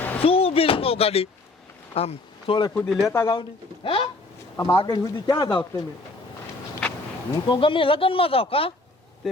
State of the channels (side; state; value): right; quieter; 3.1 dB